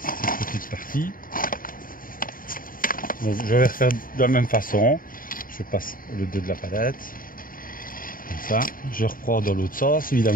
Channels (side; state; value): right; late; 0.41 ms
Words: petite partie. Donc je vais refaire de la même façon. Je passe le dos de la palette. Comme ça. Je reprends dans l'autre sens,